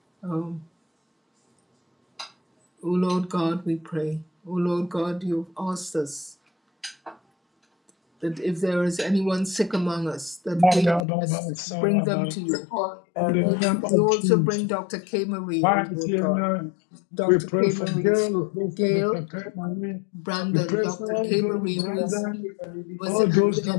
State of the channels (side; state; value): right; drops out; at 11.1 s